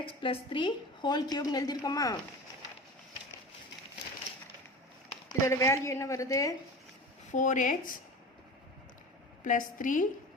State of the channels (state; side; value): normal; both; correlation 0.33